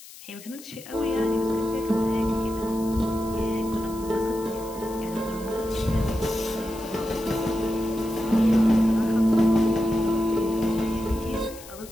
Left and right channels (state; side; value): noise; left; hiss, 18 dB below the sound